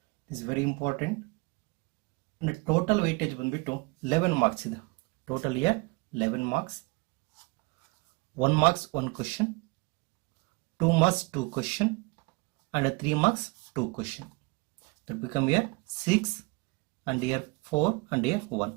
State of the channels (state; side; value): quieter; left; 26.8 dB